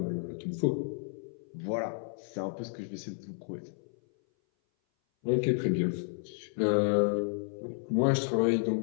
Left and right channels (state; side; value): silent; right; 57 dB below the other